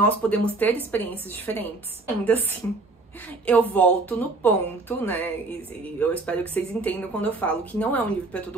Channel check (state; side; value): quieter; left; 3.4 dB